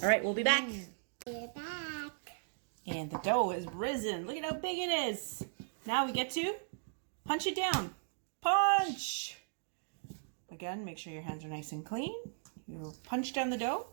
All right, we'll be back. We're back. And the dough is risen. Look at how big it is. Now we get to punch it down. Punch! Again, make sure your hands are nice and clean. You punch down the dough.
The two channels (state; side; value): silent; left; digital silence